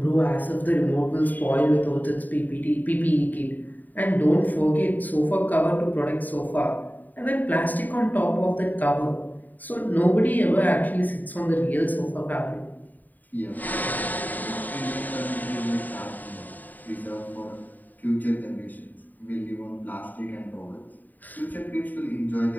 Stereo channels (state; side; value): late; right; 0.085 ms